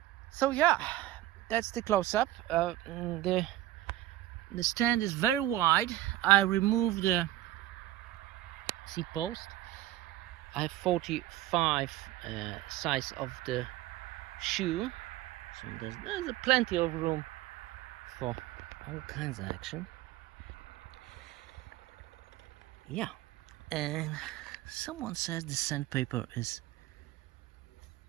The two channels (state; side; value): quieter; left; 15.0 dB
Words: So yeah, that's the close-up. The stand is very wide. I removed the seat post. I have 45 size of the shoe, so there's plenty of room for all kinds of action. Yeah, and someone says the sandpaper is